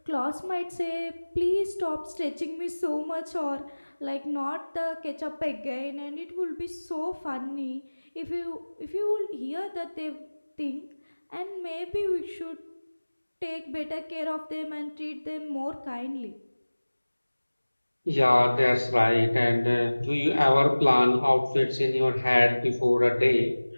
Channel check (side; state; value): both; inverted; correlation -1.00